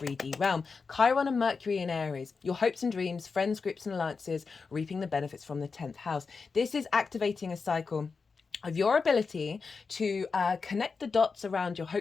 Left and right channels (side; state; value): right; quieter; 4.9 dB